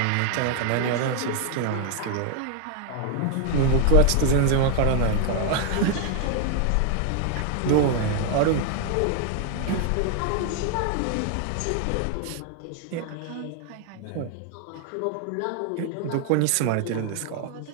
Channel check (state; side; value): different; both; correlation 0.00